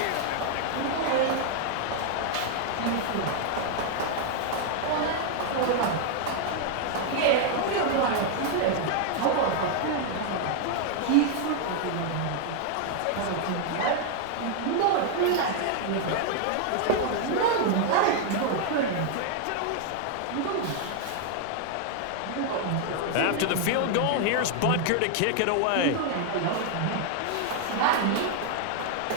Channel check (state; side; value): different; both; correlation 0.00